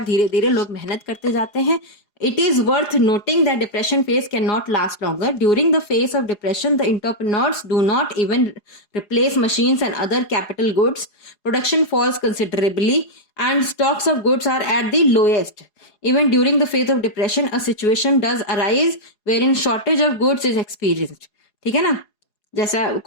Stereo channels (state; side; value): late; right; 4.8 ms